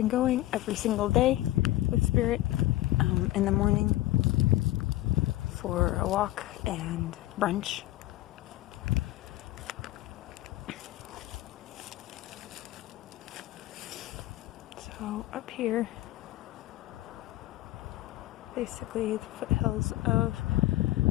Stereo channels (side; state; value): right; quieter; 16.5 dB